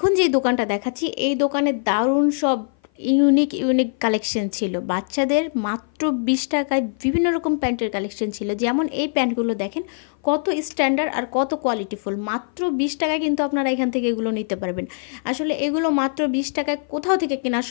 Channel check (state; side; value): silent; right; 56 dB below the other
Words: যে দোকানটা দেখাচ্ছি এই দোকানে দারুণ সব ইউনিক কালেকশন ছিল। বাচ্চাদের মাত্র 20 টাকায় বিভিন্ন রকম প্যান্টের কালেকশন ছিল, যেমন এই প্যান্টগুলো দেখেন কত স্ট্যান্ডার্ড আর কত কোয়ালিটিফুল। মাত্র 20 টাকায় কিন্তু আপনারা এখান থেকে এগুলো নিতে পারবেন। আসলে এগুলো মাত্র 20 টাকায় কোথাও থেকে কেনা